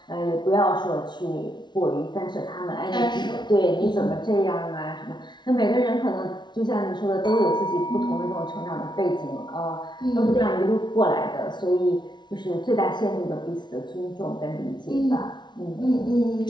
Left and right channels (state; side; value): late; right; 0.21 ms